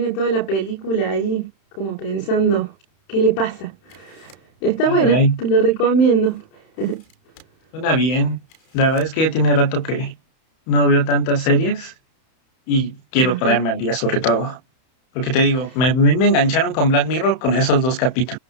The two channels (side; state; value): right; late; 31 ms